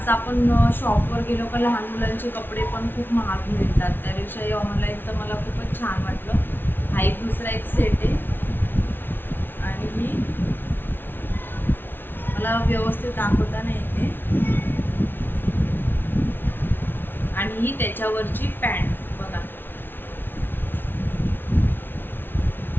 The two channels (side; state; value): right; late; 0.10 ms